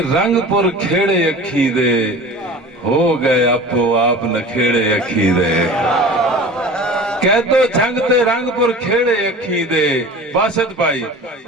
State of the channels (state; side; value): normal; both; correlation 0.38